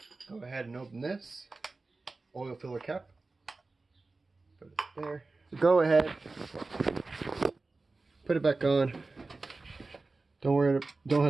Go ahead and open this oil filler cap. Put it there. Go ahead. Put it back on. Don't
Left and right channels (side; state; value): left; quieter; 3.6 dB